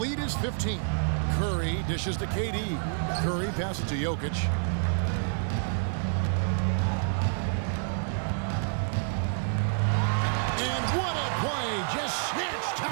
is 15. Curry dishes to KD. Curry passes to Jokic. What a play, just snatched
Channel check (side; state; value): left; silent; 59 dB below the other